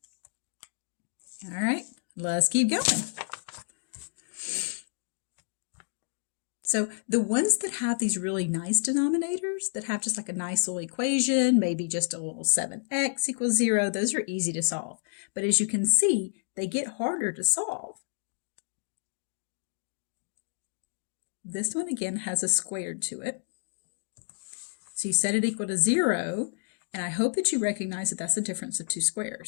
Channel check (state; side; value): silent; right; digital silence